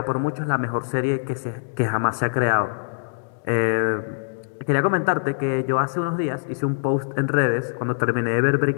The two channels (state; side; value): silent; right; digital silence